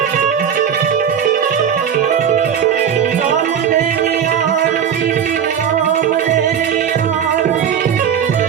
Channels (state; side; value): quieter; left; 8.3 dB